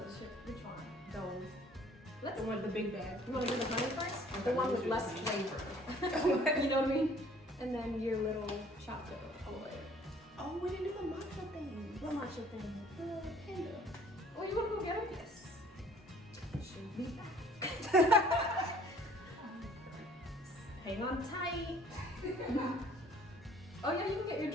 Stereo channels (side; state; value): both; normal; correlation 0.56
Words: shit. Which one? Those. Let's. The one, the big bag. You want to do the honey first? Okay, The one with let's do less the flavor. You know what I mean? And then your little chocolate all the way. Oh, we didn't do the matcha thing. What matcha thing? The panda. Oh, you want to go get it? Yes. Should be back. Hang on tight. Oh yeah, you can get your